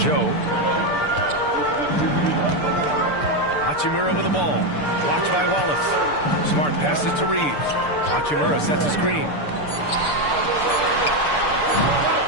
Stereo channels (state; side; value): late; right; 6.8 ms